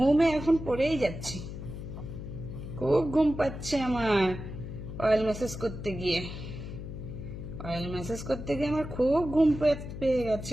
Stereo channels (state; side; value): noise; left; hum, 9 dB below the sound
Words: এখন পড়েই যাচ্ছি। খুব ঘুম পাচ্ছে আমার অয়েল ম্যাসেজ করতে গিয়ে। অয়েল ম্যাসেজ করতে গিয়ে আমার খুব ঘুম পেয়ে গেছে